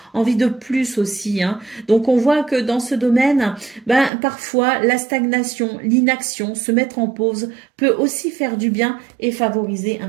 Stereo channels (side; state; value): left; drops out; at 4.1 s